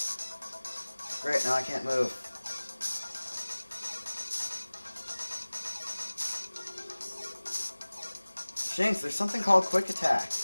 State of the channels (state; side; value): inverted; both; correlation -1.00